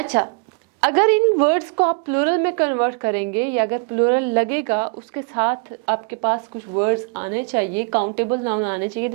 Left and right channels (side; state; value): left; quieter; 34.9 dB